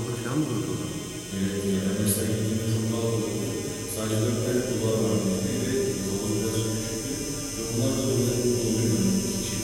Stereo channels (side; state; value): both; identical; correlation 1.00